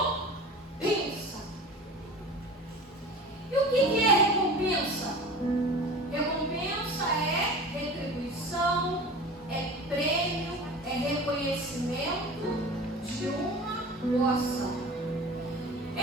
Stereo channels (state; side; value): normal; both; correlation 0.36